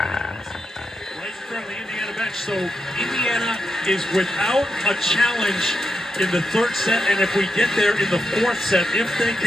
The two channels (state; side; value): normal; both; correlation 0.85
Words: right in front of the Indiana bench. So Indiana is without a challenge in the third set, and if we get there in the fourth set, if they